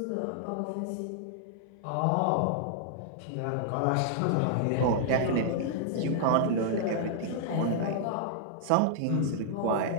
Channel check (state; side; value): different; both; correlation -0.01